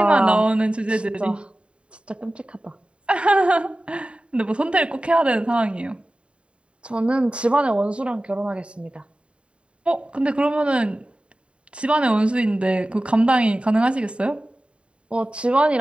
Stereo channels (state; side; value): late; left; 0.057 ms